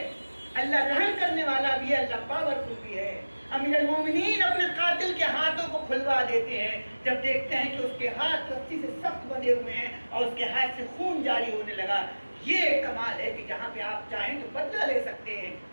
اللہ رحم کرنے والا بھی ہے، اللہ پاورفل بھی ہے۔ امیر المومنین اپنے قاتل کے ہاتھوں کو کھلوا دیتے ہیں جب دیکھتے ہیں کہ اس کے ہاتھ رسی سے سخت بندھے ہوئے ہیں اور اس کے ہاتھ سے خون جاری ہونے لگا۔ یہ کمال ہے کہ جہاں پہ آپ چاہیں تو بدلہ لے سکتے ہیں۔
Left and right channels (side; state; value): both; inverted; correlation -1.00